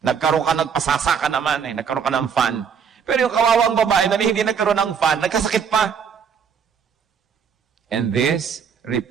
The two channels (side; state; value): left; quieter; 7.1 dB